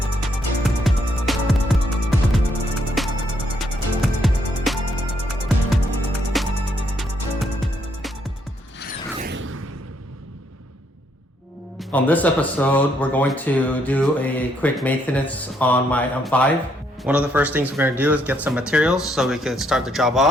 On this episode, we're going to do a quick maintenance on my M5. One of the first things we're going to do is get some materials so we can start the job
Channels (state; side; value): normal; both; correlation 0.72